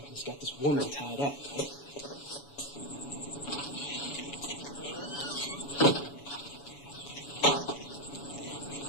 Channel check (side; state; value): right; late; 7.1 ms